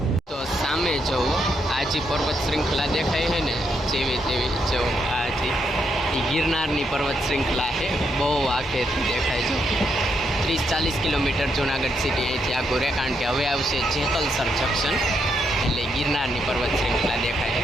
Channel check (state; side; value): normal; both; correlation 0.79